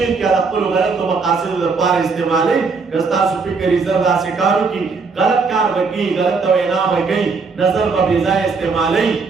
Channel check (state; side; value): quieter; left; 4.7 dB